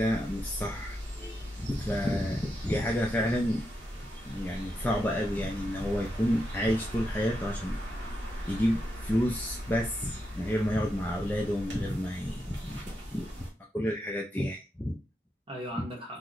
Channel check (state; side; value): normal; both; correlation 0.84